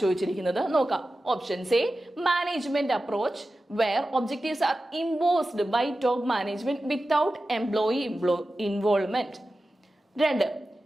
ചോദിച്ചിരിക്കുന്നത്. നോക്കാം. Options A, management approach where objectives are imposed by top management without employee involvement. 2,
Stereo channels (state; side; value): normal; both; correlation 0.94